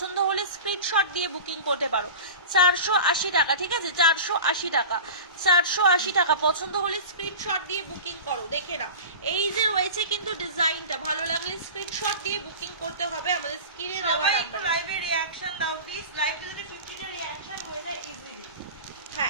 হলে স্ক্রিনশট দিয়ে বুকিং করতে পারো, 480 টাকা, ঠিক আছে। 480 টাকা, 480 টাকা। পছন্দ হলে স্ক্রিনশট দিয়ে বুকিং করো। দেখে নাও, এই যে রয়েছে কিন্তু ডিজাইনটা, ভালো লাগলে স্ক্রিনশট দিয়ে বুকিং করতে হবে আমাদের স্ক্রিনে দেওয়া নাম্বারে। লাইভে রিঅ্যাকশন দাও প্লিজ, লাইভে যদি 50টা রিঅ্যাকশন হয়ে যায় ইজিলি।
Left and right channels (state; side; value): inverted; both; correlation -0.34